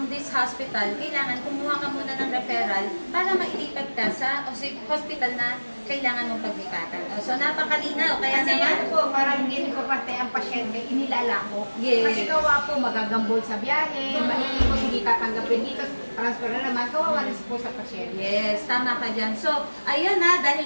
this hospital, kailangan kumuha ka muna ng referral para mailipat ka sa hospital na kailangan mong paglipatan. So, napakalinaw. Kaya kasi naman po, parang hindi ko pati ang pasyente, inilalako. Yes. Kasi kawa po, magagambol sa biyahe, maiikot, hindi tatanggapin dito, transfer na naman, kawawa rin po sa pasyente. Yes, tama ka dyan. So, ayun na,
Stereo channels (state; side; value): inverted; both; correlation -1.00